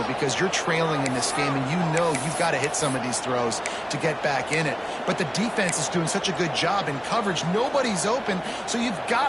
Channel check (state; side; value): identical; both; correlation 1.00